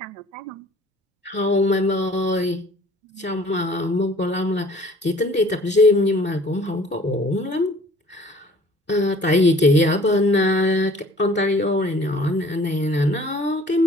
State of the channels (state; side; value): normal; both; correlation 0.52